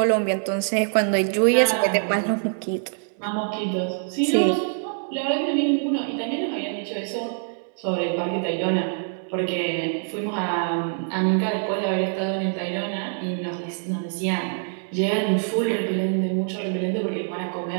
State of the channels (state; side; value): silent; left; digital silence